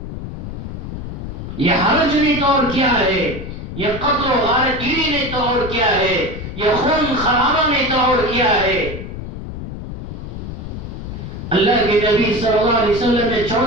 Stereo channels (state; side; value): noise; left; rumble, 8 dB below the sound